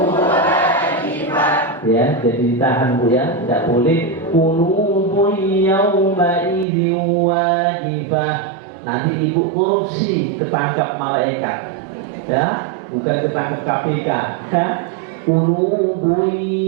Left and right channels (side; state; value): left; drops out; at 6.7 s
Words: wajibah. Ya, jadi ditahan Bu ya, tidak boleh qulubun yawma idzin wajibah. Nanti ibu korupsi, ketangkap malaikat. Ya, bukan ketangkap KPK. Ya. Qulubun